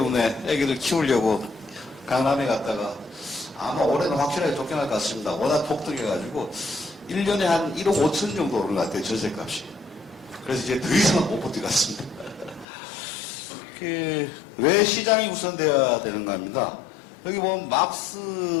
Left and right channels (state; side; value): drops out; right; at 12.7 s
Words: 애기를 키우려고 강남에 갔다가 아마 올해는 확실하게 쫓겨날 것 같습니다. 워낙 폭등해가지고 1년에 한 1억 5천 정도 오른 것 같아요. 전세값이. 그래서 이제 더 이상은 못 버틸 것 같습니다. 왜 시장이 우선돼야 되는가 합니다. 여기 보면 막스